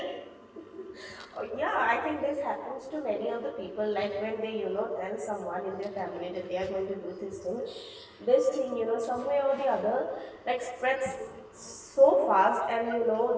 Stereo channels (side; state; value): both; identical; correlation 1.00